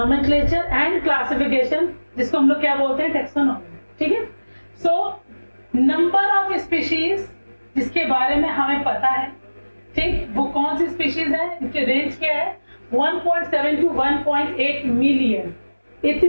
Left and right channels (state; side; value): inverted; both; correlation -1.00